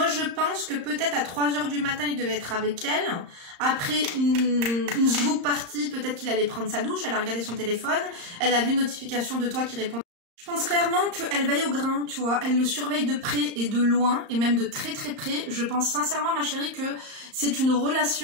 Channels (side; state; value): left; late; 35 ms